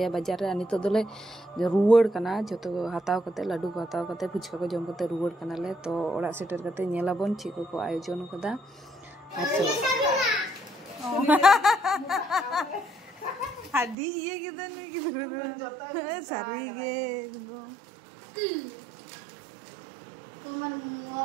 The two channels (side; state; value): left; drops out; at 14.0 s